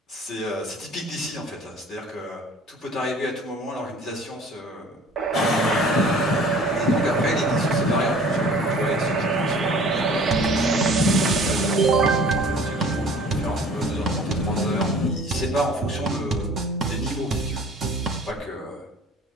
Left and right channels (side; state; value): both; normal; correlation 0.48